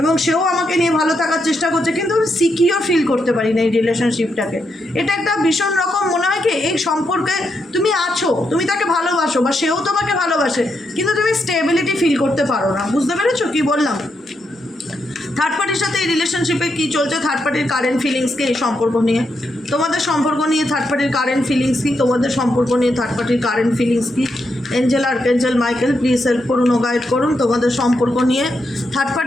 এবং সেও আমাকে নিয়ে ভালো থাকার চেষ্টা করছে, কিন্তু আমি সিকিউর ফিল করতে পারি না এই রিলেশনশিপটাকে। এটা একটা ভীষণ রকম মনে হয় কি এই সম্পর্কে তুমি আছো, তুমি তাকে ভালোবাসো বা সেও তোমাকে ভালোবাসে, কিন্তু তুমি স্টেবিলিটি ফিল করতে পারো না। বুঝতে পেরেছো কি বললাম? থার্ড পার্টির সাথে এই রিলেশনশিপে কী চলছে, থার্ড পার্টির কারেন্ট ফিলিংস কি এই সম্পর্ক নিয়ে, তোমাদের সম্পর্ক নিয়ে থার্ড পার্টির কারেন্ট ফিলিংস কি, তোমাদের সম্পর্ক নিয়ে থার্ড পার্টির কারেন্ট ফিলিংস কি। Angel, archangel Michael, please help করুন ও গাইড করুন। তোমাদের সম্পর্ক নিয়ে থার্ড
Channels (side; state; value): both; normal; correlation 0.82